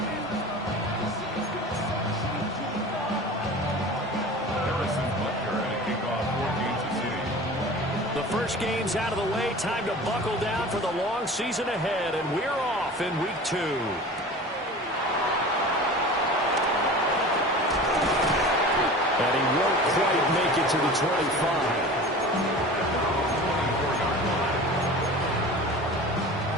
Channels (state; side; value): normal; both; correlation 0.37